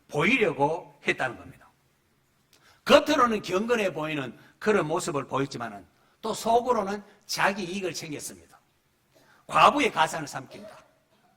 보이려고 했다는 겁니다. 겉으로는 경건해 보이는 그런 모습을 보였지만은 또 속으로는 자기 이익을 챙겼습니다. 과부의 가산을 삼킨다.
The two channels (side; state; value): both; identical; correlation 1.00